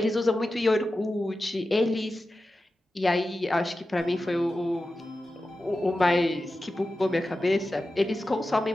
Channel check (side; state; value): both; normal; correlation 0.93